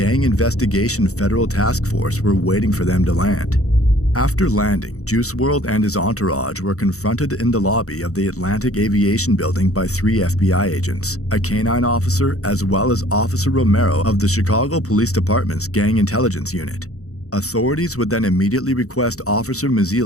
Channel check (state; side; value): late; right; 0.65 ms